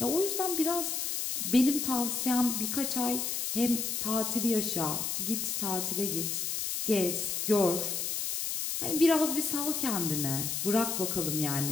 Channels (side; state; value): left; noise; hiss, 1 dB below the sound